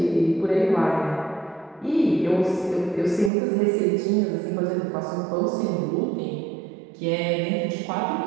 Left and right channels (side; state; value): left; drops out; at 3.3 s